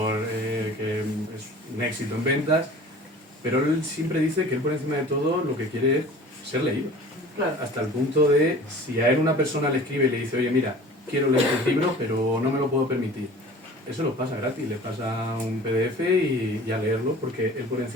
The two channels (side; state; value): both; normal; correlation 0.43